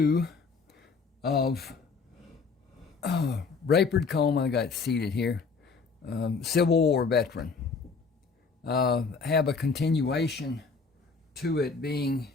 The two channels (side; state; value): right; quieter; 4.8 dB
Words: of Rayford Coleman. I got it seated here. Civil War veteran. Have a continuation to it being